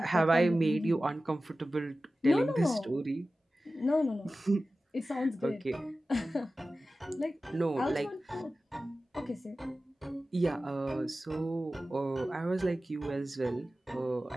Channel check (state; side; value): normal; both; correlation 0.95